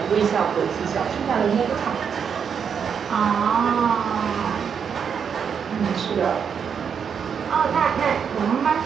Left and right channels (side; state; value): left; quieter; 7.0 dB